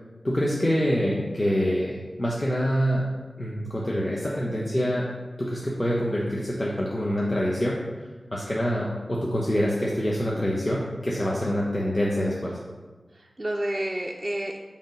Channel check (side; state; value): both; normal; correlation 0.94